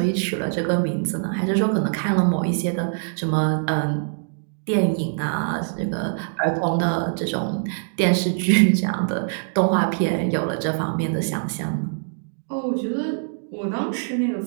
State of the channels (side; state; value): left; silent; digital silence